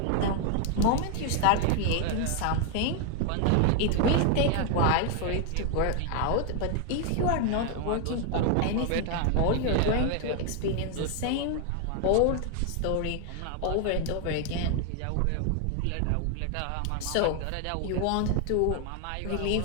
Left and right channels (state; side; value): different; both; correlation 0.00